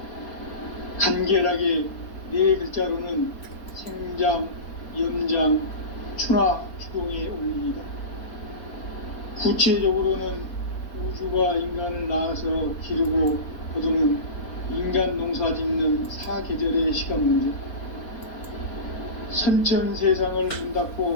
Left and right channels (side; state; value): right; late; 4.0 ms